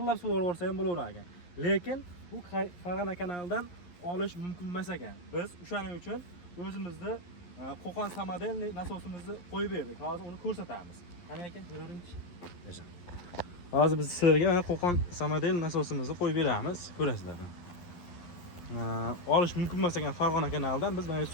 suvarsa ham bo'laverar ekan. Lekin bu Farg'ona kanalidan olish mumkin emas ekan. Biz o'shaning uchun o'zimizda Qo'qon samodelniy nasosimizni qo'yib berdik. Hozir uni ko'rsatamiz. Qani aka, ko'raringchi. Yaxshi. Hozir biz sizlarga Qo'qon samodel nasosimizni qo'yib beramiz, ko'rasizlar. Olish mumkin emas ekan Farg'ona kanalidan biz mana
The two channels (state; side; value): late; right; 11 ms